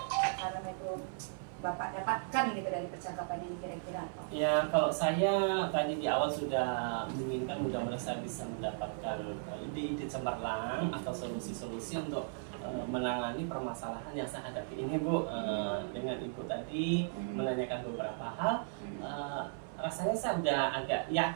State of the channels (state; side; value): silent; left; 54 dB below the other